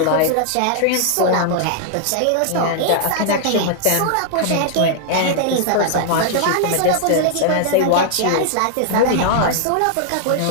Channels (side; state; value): both; different; correlation -0.01